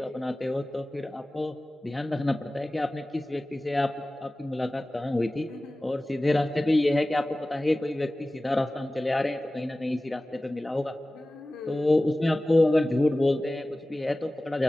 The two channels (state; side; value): normal; both; correlation 0.97